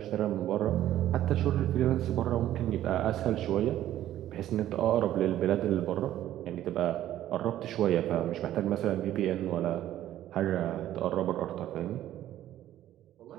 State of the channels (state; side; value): quieter; left; 12.8 dB